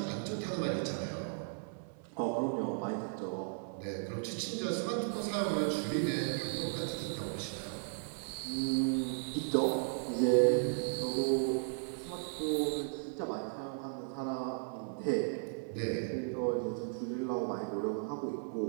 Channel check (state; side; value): silent; left; 54 dB below the other